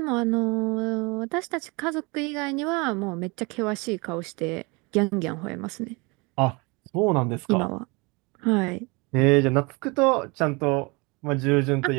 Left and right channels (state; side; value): quieter; left; 27.7 dB